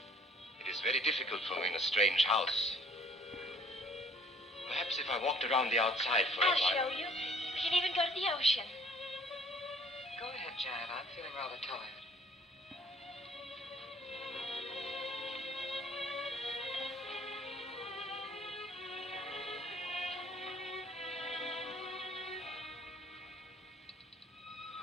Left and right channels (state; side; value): normal; both; correlation 0.57